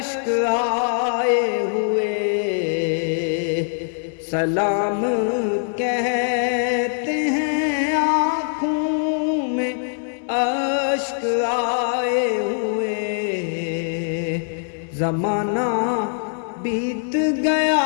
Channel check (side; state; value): right; silent; 64 dB below the other